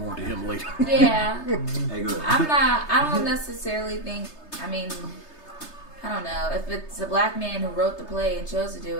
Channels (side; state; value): right; late; 3.3 ms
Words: to him later. Yeah, Hey, go ahead. I don't necessarily think. I mean, I don't know if it's a black man who wrote the play and chose to do